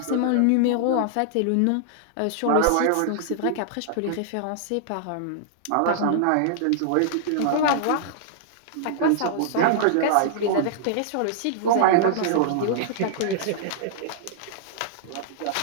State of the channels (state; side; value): different; both; correlation -0.01